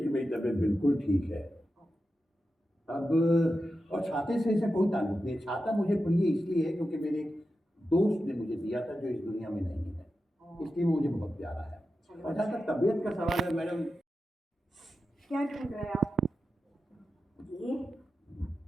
कि मेरी तबीयत बिल्कुल ठीक है अब, और छाते से ऐसा कोई ताल्लुक नहीं। छाता मुझे प्रिय इसलिए है क्योंकि मेरे एक दोस्त ने मुझे दिया था जो इस दुनिया में नहीं है, इसलिए वो मुझे बहुत प्यारा है। और जहाँ तक तबीयत का सवाल है मैडम, क्या ढूंढ रहे हैं आप? ये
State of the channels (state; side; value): normal; both; correlation 0.91